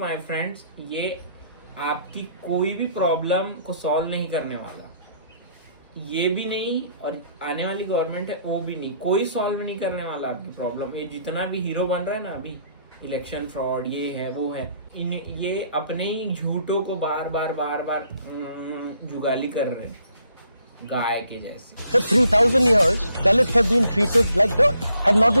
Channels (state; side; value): inverted; both; correlation -0.67